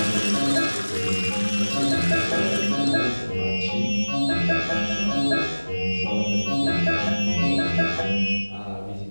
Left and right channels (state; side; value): inverted; both; correlation -1.00